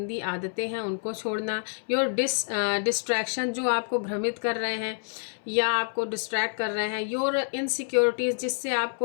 आदतें हैं उनको छोड़ना। योर डिस्ट्रैक्शन, जो आपको भ्रमित कर रहे हैं या आपको डिस्ट्रैक्ट कर रहे हैं। योर इनसिक्योरिटीज़, जिससे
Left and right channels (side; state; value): right; silent; 59 dB below the other